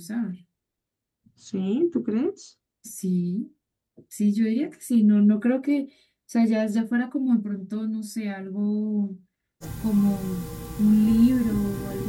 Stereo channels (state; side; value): identical; both; correlation 1.00